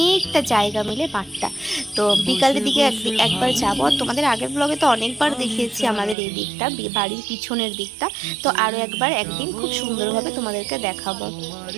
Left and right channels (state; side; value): drops out; left; at 6.2 s